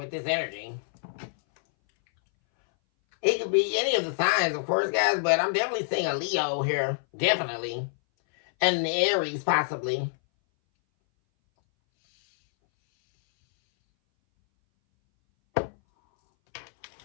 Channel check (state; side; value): silent; right; 60 dB below the other